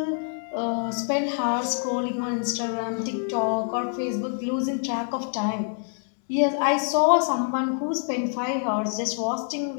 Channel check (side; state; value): right; silent; 58 dB below the other